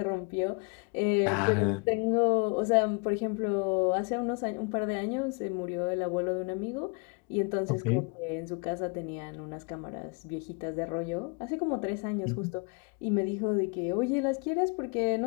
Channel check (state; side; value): quieter; right; 33.9 dB